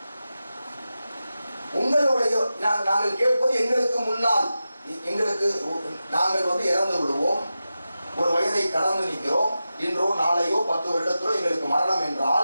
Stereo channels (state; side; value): inverted; both; correlation -0.92